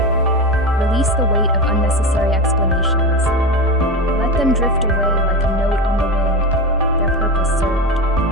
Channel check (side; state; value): both; normal; correlation 0.22